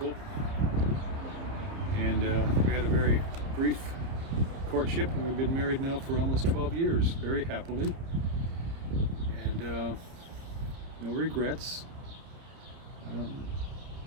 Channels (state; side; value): late; left; 30 ms